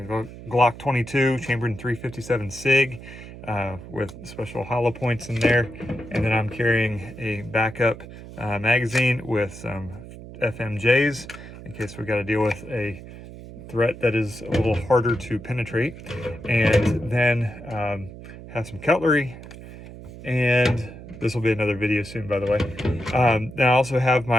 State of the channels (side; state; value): right; noise; hum, 15 dB below the sound